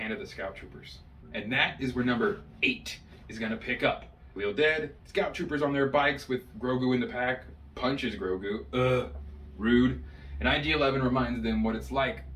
of the Scout Troopers. And that is where number 8 is going to pick up. Khalil dead, Scout Troopers on their bikes with Grogu in the pack, punches Grogu, rude, and IG-11 reminds them what it's like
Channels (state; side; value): identical; both; correlation 1.00